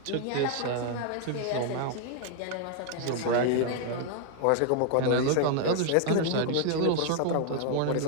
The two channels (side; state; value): both; different; correlation 0.00